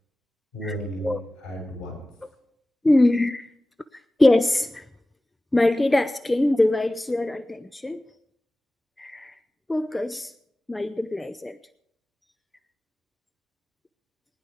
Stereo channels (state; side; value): normal; both; correlation 0.97